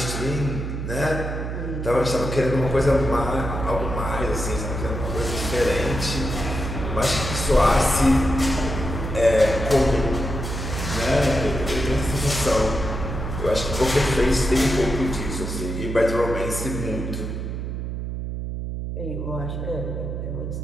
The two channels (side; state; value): right; noise; hum, 4 dB below the sound